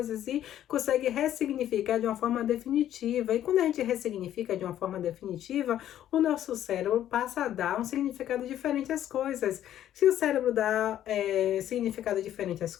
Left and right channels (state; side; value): quieter; right; 11.6 dB